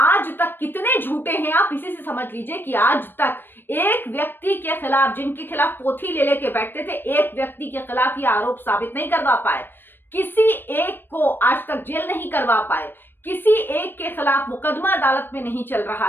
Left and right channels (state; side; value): late; right; 0.096 ms